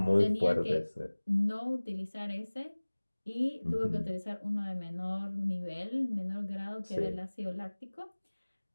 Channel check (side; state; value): both; inverted; correlation -1.00